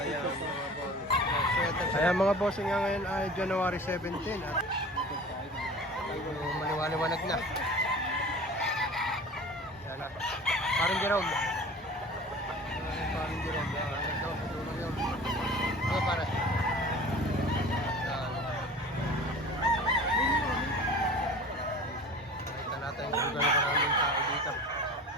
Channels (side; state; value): both; normal; correlation 0.40